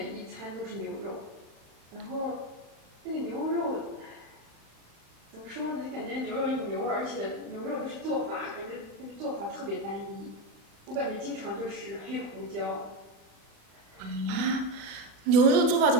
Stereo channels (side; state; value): left; late; 36 ms